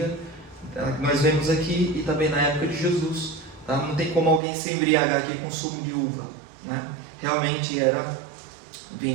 Nós vemos aqui e também na época de Jesus. Tá? Não tem como alguém se embriagar aqui com sumo de uva, né? Realmente era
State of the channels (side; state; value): left; drops out; at 4.4 s